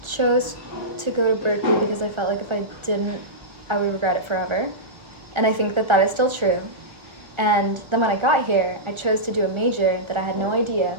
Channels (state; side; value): late; left; 1.3 ms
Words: chose to go to Berkeley because I felt like if I didn't, I would regret it forever. And I think that that is still true. And then when I got here, I chose to do a major that I had no idea